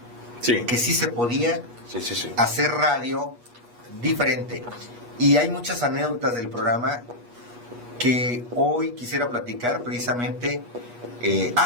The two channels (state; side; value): late; left; 8.3 ms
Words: sí, que sí se podía hacer radio diferente. Y hay muchas anécdotas del programa que hoy quisiera platicar precisamente.